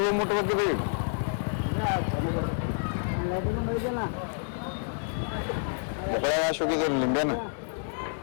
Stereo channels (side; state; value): right; silent; 59 dB below the other